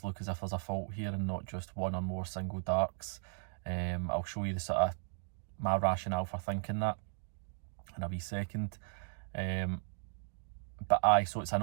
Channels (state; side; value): silent; left; digital silence